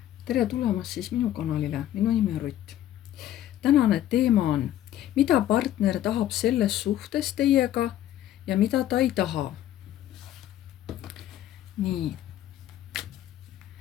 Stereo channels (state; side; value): quieter; right; 12.4 dB